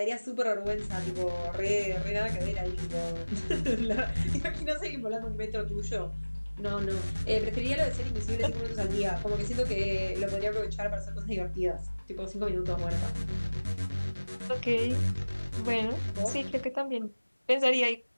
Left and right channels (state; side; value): inverted; both; correlation -1.00